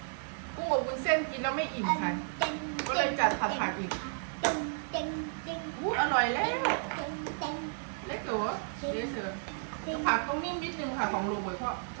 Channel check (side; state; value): left; silent; 56 dB below the other